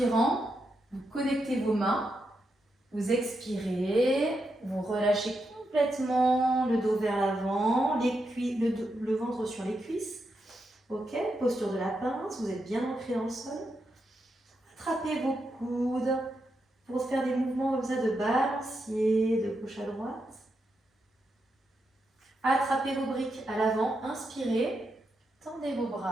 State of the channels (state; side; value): normal; both; correlation 0.84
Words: vous connectez vos mains, vous expirez, vous relâchez complètement le dos vers l'avant, le ventre sur les cuisses. Ok, posture de la pince, vous êtes bien ancré dans le sol. Attrapez vos coudes pour faire des mouvements comme ça de balancier, de gauche à droite. Attrapez vos briques à l'avant, inspirez, tendez vos